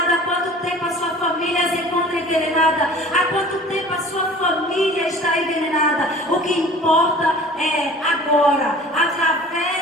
há quanto tempo a sua família se encontra envenenada, há quanto tempo a sua família está envenenada. O que importa é agora,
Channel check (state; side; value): normal; both; correlation 0.45